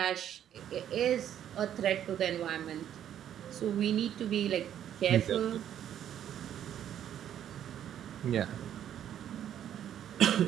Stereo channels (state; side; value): quieter; left; 10.3 dB